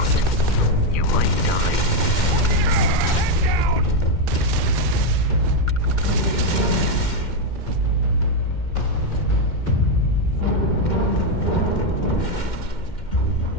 You might die.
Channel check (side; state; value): right; late; 2.1 ms